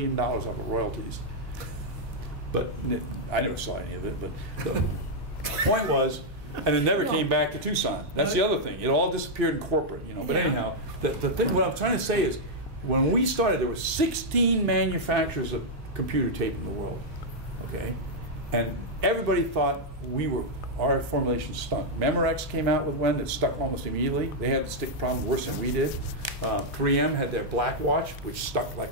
off of royalties. But I never saw any of it. But the point was, and it never came back to Tucson. That's the other thing. It all disappeared in corporate, you know. But anyhow, the thing, what I'm trying to say is, when we started, there were 16 manufacturers of computer tape in the world, okay? And everybody thought our formulation stunk. Memorex came out with one that stuck almost immediately. They had the stick problem worse than we did. 3M had their black watch, which stuck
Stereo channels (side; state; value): both; normal; correlation -0.04